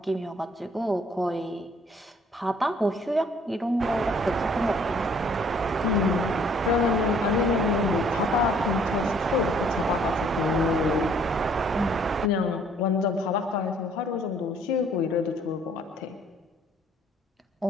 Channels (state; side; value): normal; both; correlation 0.60